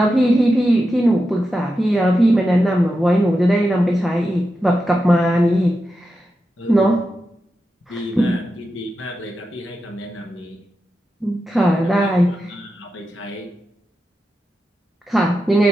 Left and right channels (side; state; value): both; normal; correlation 0.89